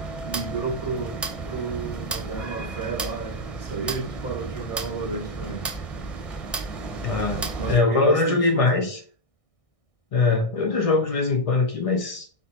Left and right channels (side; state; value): right; late; 1.6 ms